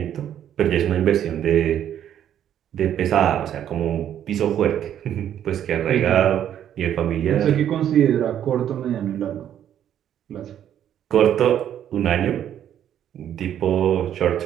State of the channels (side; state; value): left; quieter; 10.3 dB